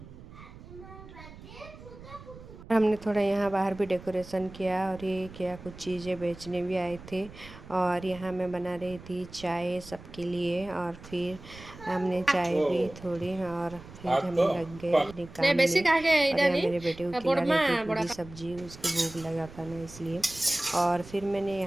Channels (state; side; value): noise; right; rumble, 17 dB below the sound